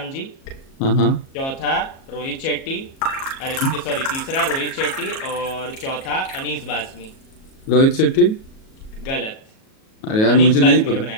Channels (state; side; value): late; right; 37 ms